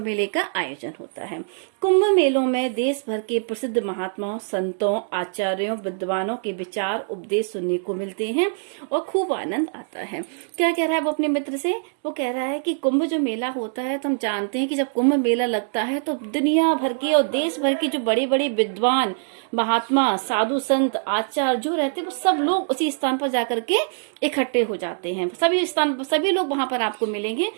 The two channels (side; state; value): left; silent; digital silence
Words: का आयोजन होता है। कुंभ मेलों में देश भर के प्रसिद्ध महात्माओं, संतों, आचार्यों, विद्वानों के विचार उपदेश सुनने को मिलते हैं और खूब आनंद आता है। क्या कह रहा है वो अपने मित्र से, वो कह रहा है कि कुंभ जो मेला होता है तो हम जानते हैं कि जब कुंभ मेला लगता है तो तो दुनिया भर के और देश भर के जो बड़े बड़े विद्वान, महात्मा, साधु, संत, आचार्य जो रहते हैं वो सब लोग उसी स्थान पर जाकर के इकट्ठे हो जाते हैं। सभी लोग वहां पर आपको मिलेंगे।